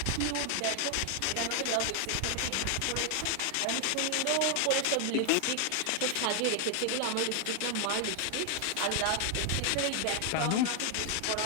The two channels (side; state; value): both; different; correlation 0.00